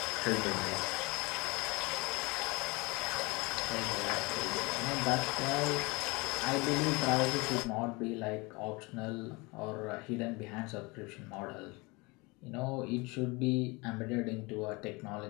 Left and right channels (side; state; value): right; quieter; 25.9 dB